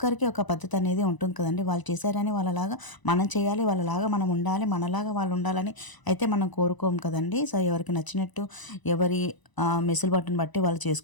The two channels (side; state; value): right; late; 1.0 ms